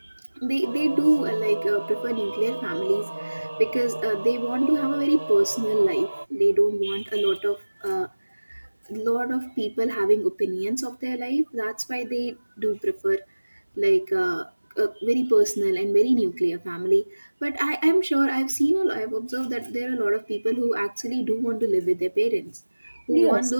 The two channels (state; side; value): inverted; both; correlation -1.00